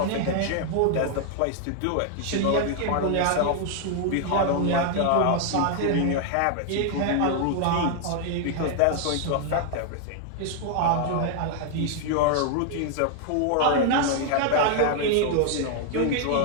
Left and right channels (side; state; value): both; different; correlation 0.00